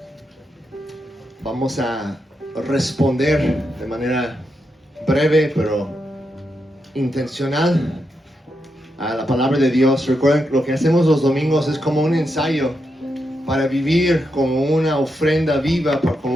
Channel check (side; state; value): both; normal; correlation 0.84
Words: Vamos a responder de manera breve, pero intencional a la palabra de Dios. Recuerden, lo que hacemos los domingos es como un ensayo para vivir como una ofrenda viva,